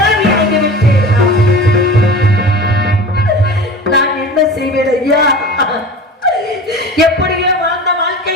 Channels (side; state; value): both; normal; correlation 0.35